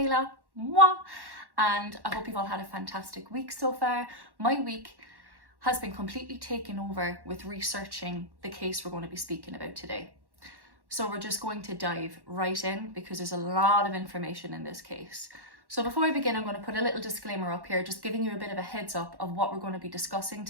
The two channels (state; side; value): late; left; 1.1 ms